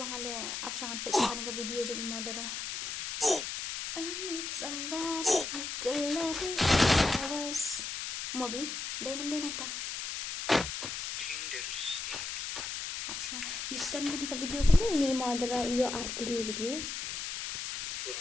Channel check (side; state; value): left; noise; hiss, 5 dB below the sound